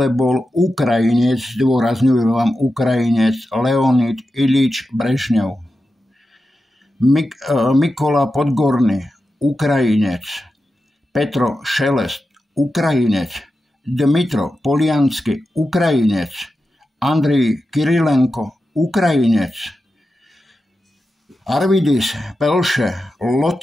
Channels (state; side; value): normal; both; correlation 0.91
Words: bol Ukrajinec, zdôrazňujem vám Ukrajinec, Leonid Ilič Brežňov. Mikola Podgorný, Ukrajinec. Petro Šelest, Ukrajinec. Dmitro Poliansky, Ukrajinec. Andrej Kirilenko, Ukrajinec. Arvidis Pelše,